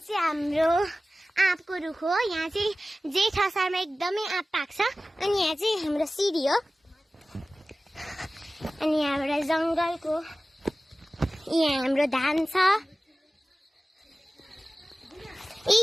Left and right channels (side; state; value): both; normal; correlation 0.96